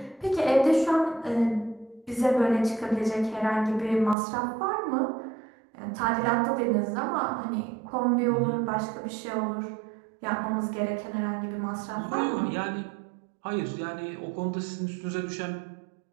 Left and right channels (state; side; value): drops out; left; at 4.2 s